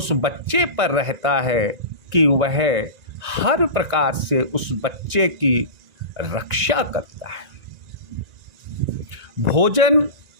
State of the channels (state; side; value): late; left; 1.9 ms